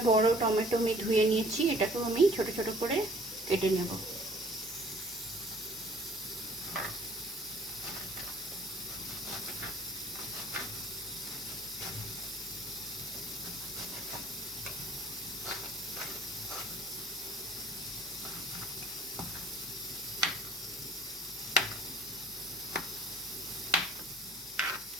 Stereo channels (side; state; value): both; normal; correlation 0.52